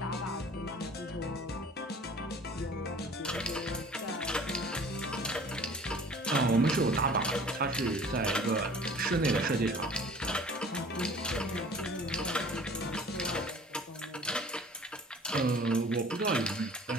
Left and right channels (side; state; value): both; normal; correlation 0.47